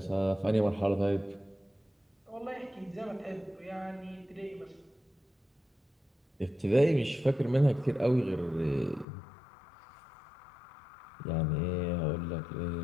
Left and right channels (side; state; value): right; drops out; at 9.1 s